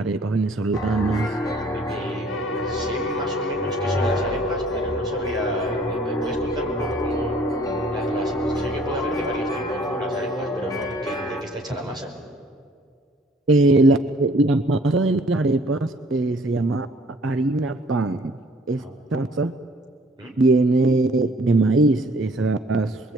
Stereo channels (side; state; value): both; normal; correlation 0.57